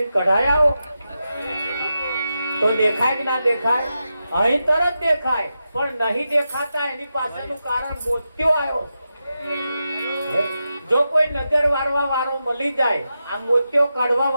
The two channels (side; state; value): both; inverted; correlation -0.89